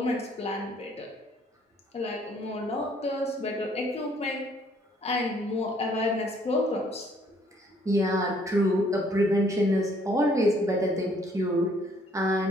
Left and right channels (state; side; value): normal; both; correlation 0.63